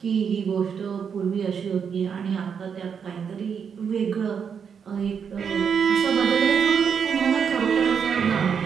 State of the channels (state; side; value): quieter; left; 6.9 dB